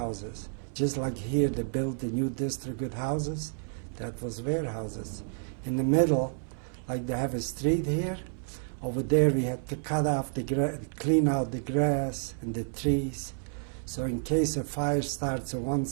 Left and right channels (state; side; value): silent; left; 58 dB below the other